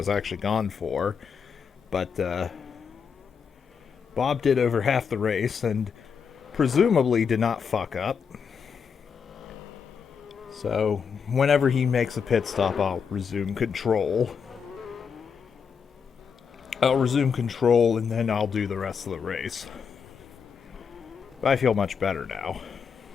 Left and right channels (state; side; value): quieter; right; 6.4 dB